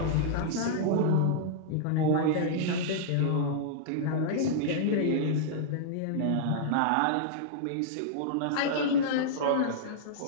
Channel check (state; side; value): different; both; correlation -0.02